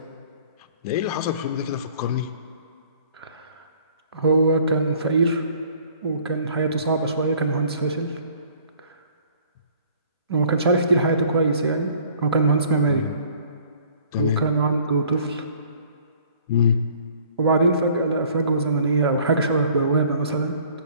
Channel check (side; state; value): both; inverted; correlation -0.55